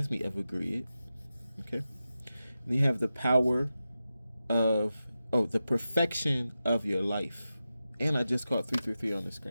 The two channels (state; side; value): inverted; both; correlation -0.92